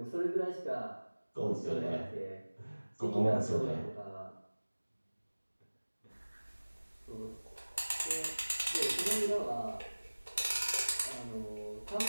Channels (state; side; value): inverted; both; correlation -1.00